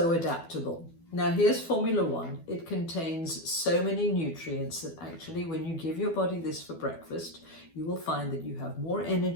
adaptable. Now here's Formula One. It contains so many nutrients that actually when you give your body this for breakfast, you will find that you have more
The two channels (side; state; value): right; late; 12 ms